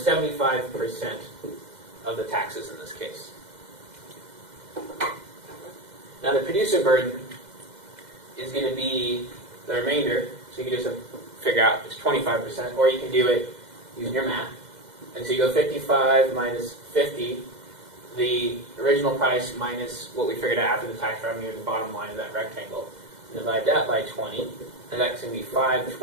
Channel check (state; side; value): late; left; 2.0 ms